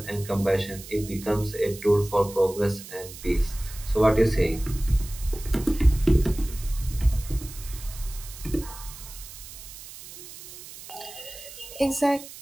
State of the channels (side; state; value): right; noise; hiss, 15 dB below the sound